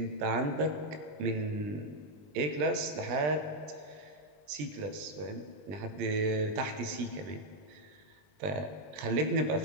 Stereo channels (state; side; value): late; left; 20 ms